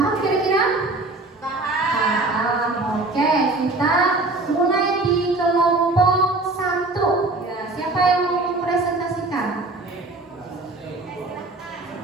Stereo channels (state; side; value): quieter; left; 3.1 dB